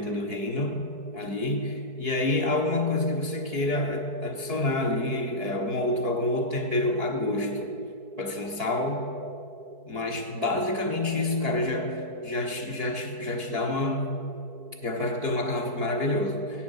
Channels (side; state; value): left; late; 4.6 ms